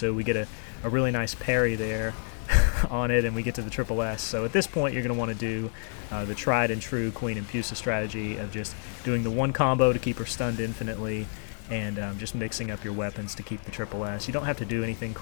We get a really nice parry there on it, and we get to the triple S. So at this point, you're going to want to do the tried and true Queen Impusa strategy of just doing the one combo to keep her stunned infinitely, and just mixing up your weapons to keep the triple S. You don't have to do anything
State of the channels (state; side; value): silent; right; digital silence